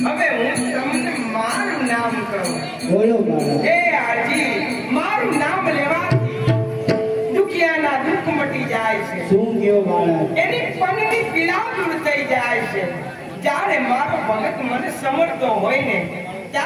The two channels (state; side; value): identical; both; correlation 1.00